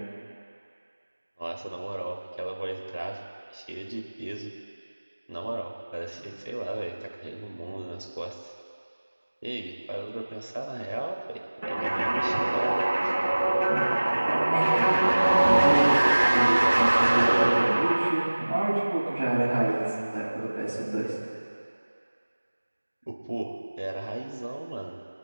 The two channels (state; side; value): inverted; both; correlation -1.00